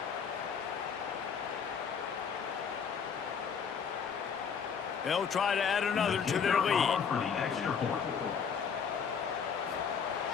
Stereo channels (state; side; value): quieter; right; 6.7 dB